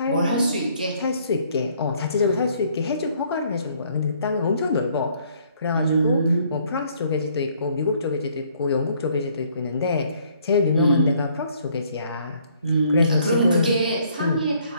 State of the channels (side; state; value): both; inverted; correlation -0.64